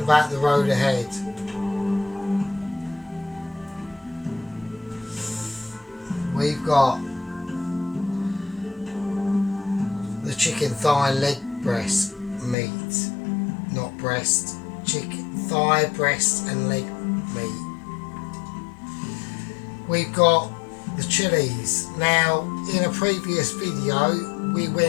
about the road ahead. We've got the chicken thigh leg breast meat, not breast, chicken thigh, breast and leg meat. We've got the chilies. Now, in a previous video we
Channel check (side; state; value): right; drops out; at 12.6 s